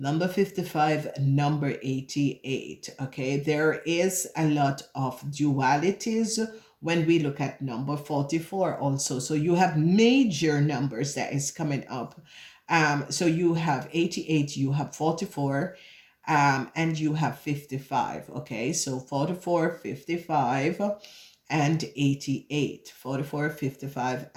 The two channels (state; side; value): identical; both; correlation 1.00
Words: 55, number 88. Okay, there is a lot of dualities when we look at number 44 also. So you have major numbers that is coming up. So you have 88, you have 44, and you have 55. Okay, so 44, 55 and 88. 44, 55